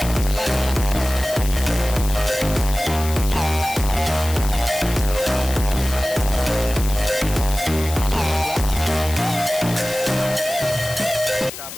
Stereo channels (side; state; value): left; noise; hiss, 10 dB below the sound